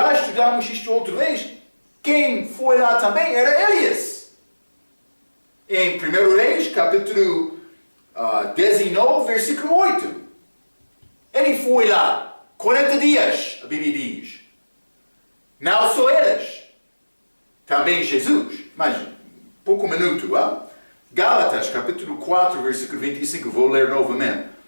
estudamos isto outra vez. Quem foi lá também era Elias. Em 1 Reis, capítulo 19, versículo 8. Ele foi lá 40 dias, a Bíblia diz. Não só eles, também Jesus. Mas, pouco minuto. Gálatas, capítulo 4, versículo 25. Vou ler novamente.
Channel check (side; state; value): both; inverted; correlation -1.00